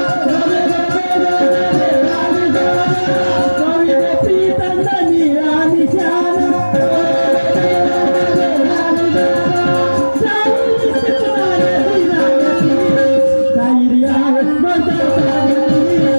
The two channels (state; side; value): inverted; both; correlation -1.00